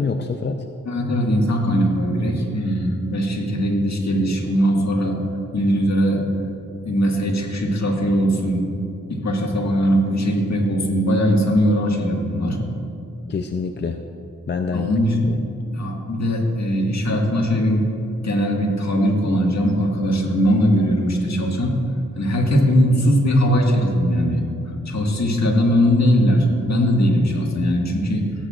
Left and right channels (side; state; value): both; normal; correlation 0.72